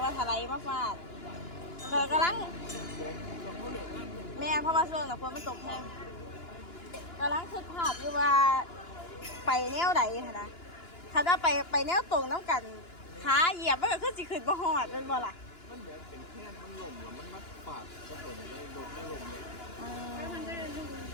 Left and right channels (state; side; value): late; right; 2.9 ms